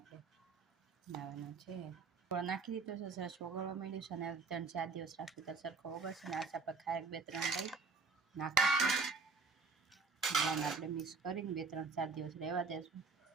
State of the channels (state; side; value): quieter; left; 4.4 dB